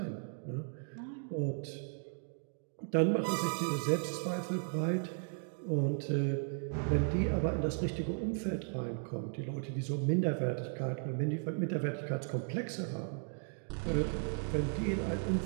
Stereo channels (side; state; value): left; silent; 54 dB below the other